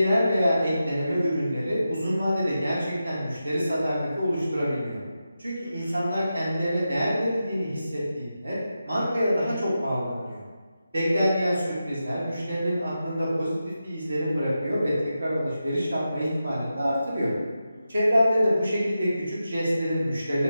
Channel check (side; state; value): both; inverted; correlation -0.90